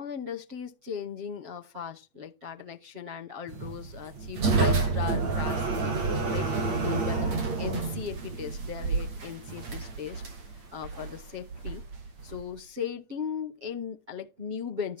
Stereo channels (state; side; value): late; left; 8.6 ms